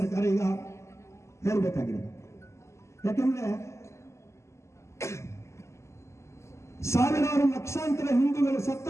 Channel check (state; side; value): late; right; 0.13 ms